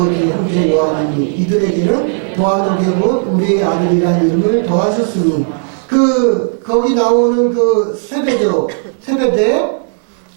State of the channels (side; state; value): left; silent; digital silence